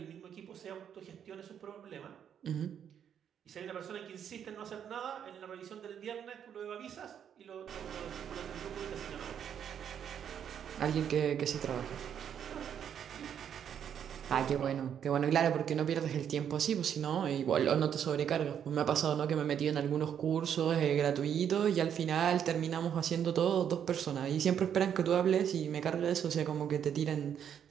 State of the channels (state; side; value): quieter; left; 8.7 dB